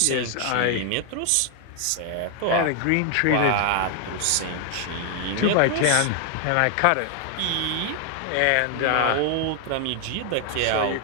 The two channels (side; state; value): both; different; correlation 0.00